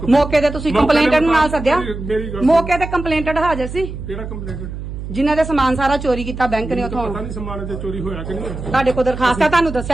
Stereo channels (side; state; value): right; noise; hum, 8 dB below the sound